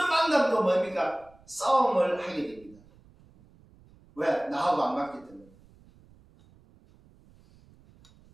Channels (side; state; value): right; noise; rumble, 28 dB below the sound